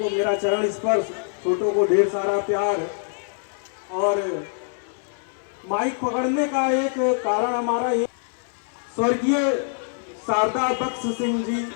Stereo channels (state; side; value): silent; right; 62 dB below the other